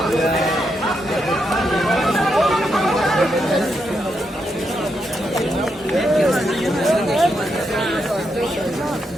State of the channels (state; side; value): normal; both; correlation 0.82